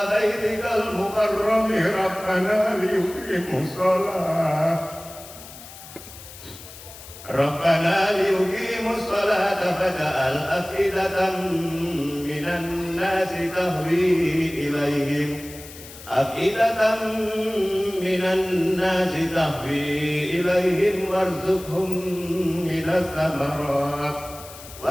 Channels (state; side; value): noise; left; hiss, 16 dB below the sound